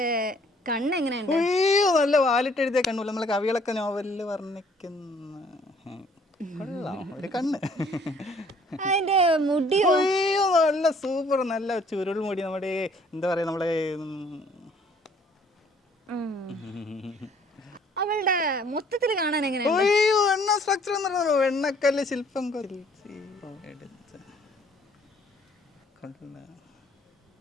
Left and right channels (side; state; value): both; normal; correlation 0.60